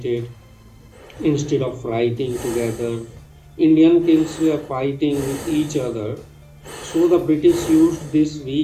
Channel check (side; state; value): both; identical; correlation 1.00